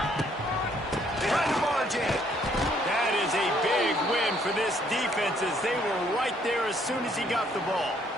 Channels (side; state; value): both; normal; correlation 0.66